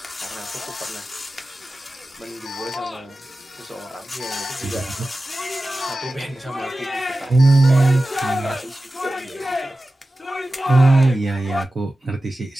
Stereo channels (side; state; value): both; normal; correlation 0.95